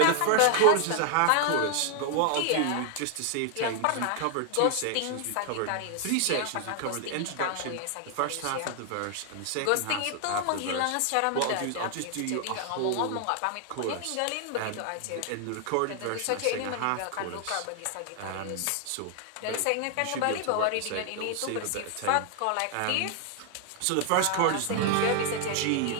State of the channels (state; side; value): different; both; correlation 0.00